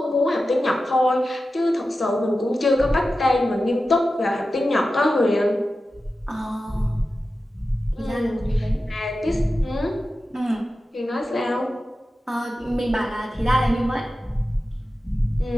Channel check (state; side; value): normal; both; correlation 0.93